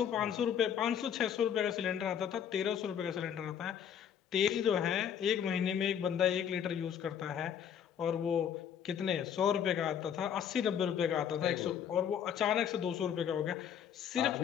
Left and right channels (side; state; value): right; quieter; 8.6 dB